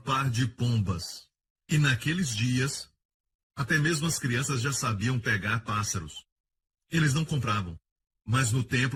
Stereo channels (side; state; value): both; identical; correlation 1.00